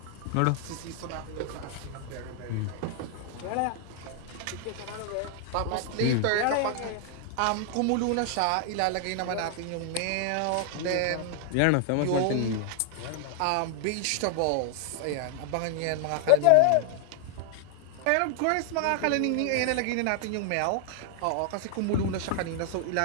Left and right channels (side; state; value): both; different; correlation 0.00